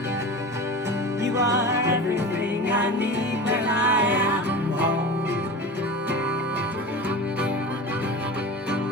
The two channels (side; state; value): both; normal; correlation 0.31